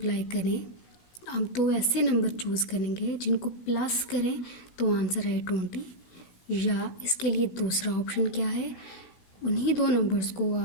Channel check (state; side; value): late; right; 16 ms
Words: करें। अब दो ऐसे नंबर चूज़ करेंगे जिनको प्लस करें तो आंसर आए 20, या इसके लिए दूसरा ऑप्शन क्या है, उन्हीं दो नंबर्स को